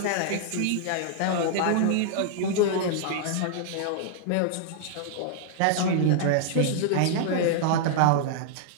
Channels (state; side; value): different; both; correlation -0.01